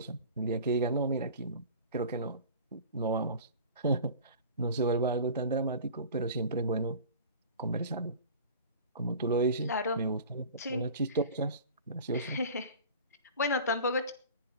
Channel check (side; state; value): both; inverted; correlation -0.40